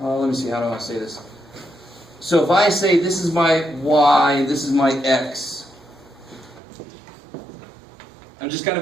see, how do I say this? So if I say this is my y, this is my x, I'm just kind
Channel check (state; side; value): drops out; left; at 6.6 s